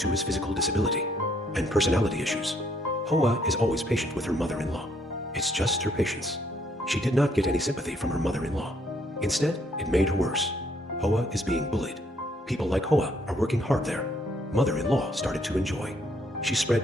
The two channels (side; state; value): both; normal; correlation 0.68